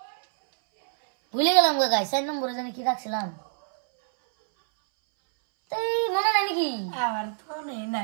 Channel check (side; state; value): left; silent; 61 dB below the other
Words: ভুলে গেলাম গো গাই। 4 নম্বরে জানি কি রাখছিলাম, তাই মনে নাই নাকি? আমার তো